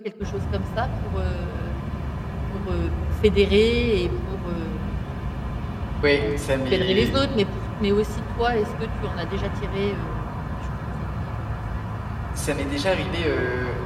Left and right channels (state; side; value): identical; both; correlation 1.00